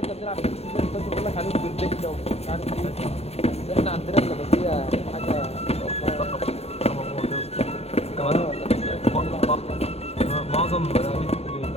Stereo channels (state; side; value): late; right; 0.30 ms